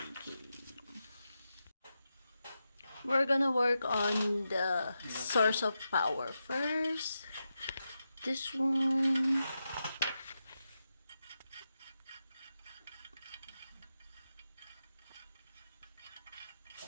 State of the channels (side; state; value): both; inverted; correlation -0.89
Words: We're gonna work on the source of power first. This one.